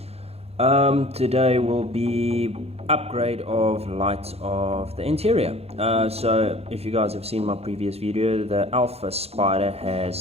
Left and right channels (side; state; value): left; late; 0.29 ms